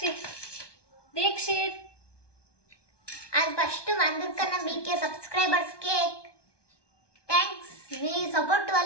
Dikshit. And first అందరికన్నా మీకే సబ్స్క్రైబర్స్ కేక్ థ్యాంక్స్. మీ సపోర్ట్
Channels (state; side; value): late; right; 1.2 ms